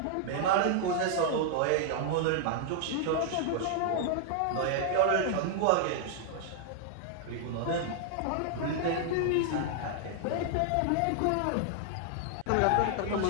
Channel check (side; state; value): both; different; correlation 0.00